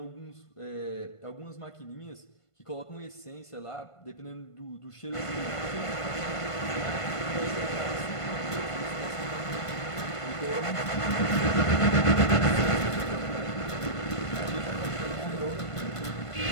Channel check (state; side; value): late; right; 1.5 ms